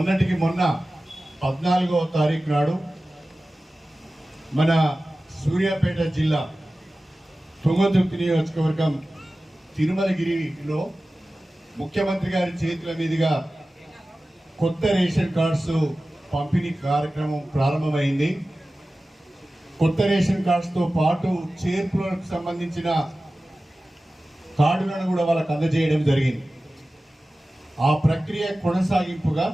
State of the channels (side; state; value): both; normal; correlation 0.96